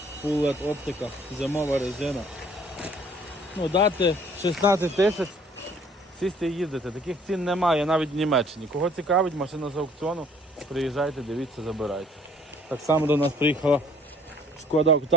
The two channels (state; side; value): normal; both; correlation 0.57